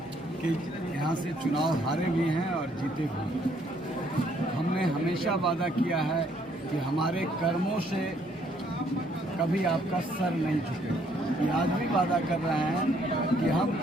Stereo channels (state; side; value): normal; both; correlation 0.67